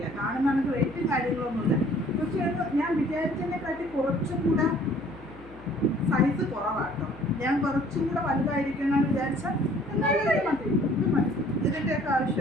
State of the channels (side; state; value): left; noise; hum, 19 dB below the sound